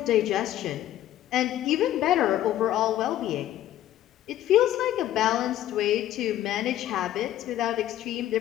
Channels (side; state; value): right; quieter; 12.7 dB